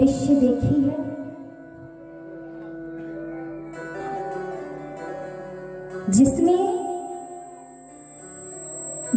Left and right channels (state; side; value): identical; both; correlation 1.00